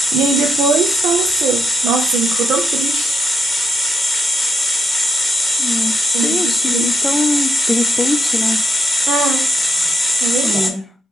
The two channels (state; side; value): normal; both; correlation 0.80